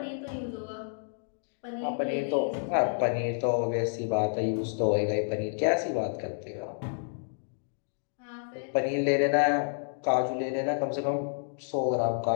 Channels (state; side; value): silent; right; digital silence